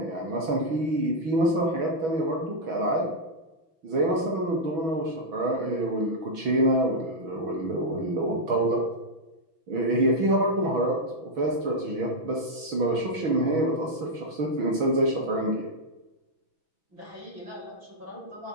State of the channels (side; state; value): left; late; 6.2 ms